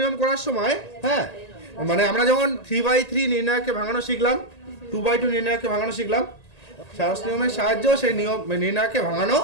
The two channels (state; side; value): late; right; 1.8 ms